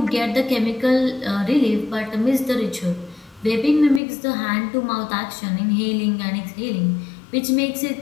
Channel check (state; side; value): drops out; right; at 4.0 s